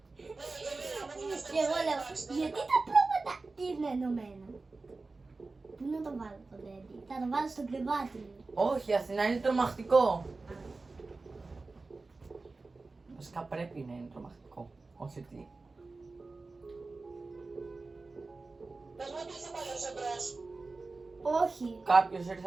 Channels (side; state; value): left; quieter; 3.7 dB